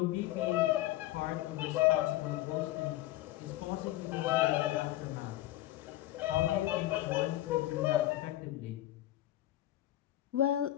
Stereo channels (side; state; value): right; quieter; 15.0 dB